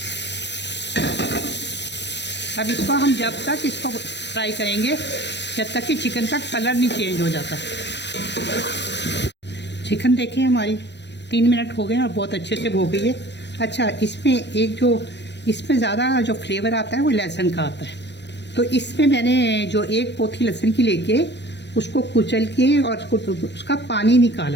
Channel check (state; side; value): late; right; 0.50 ms